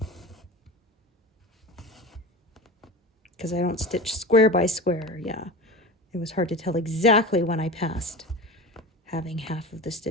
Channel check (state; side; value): normal; both; correlation 0.30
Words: Because I don't stitch square by square, yeah. It was hard to tell exactly when I passed having half of the